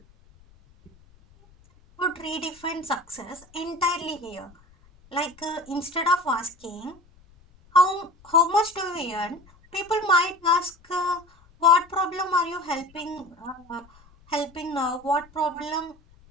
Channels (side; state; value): left; noise; rumble, 28 dB below the sound